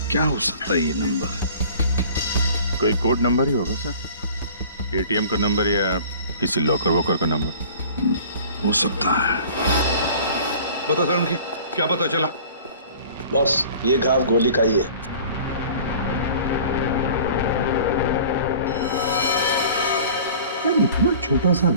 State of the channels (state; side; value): inverted; both; correlation -0.46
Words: क्या हो सकता है ये नंबर? कोई कोड नंबर ही होगा सर, एटीएम का नंबर या किसी लॉकर वॉकर का नंबर हो सकता है। बता सर, उनकी क्या पता चला? बॉस, ये घाव गोली का ही है। यार, इतना छोटा सा